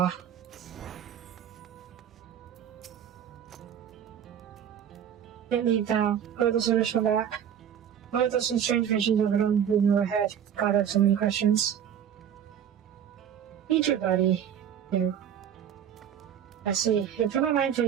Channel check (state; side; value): quieter; left; 9.1 dB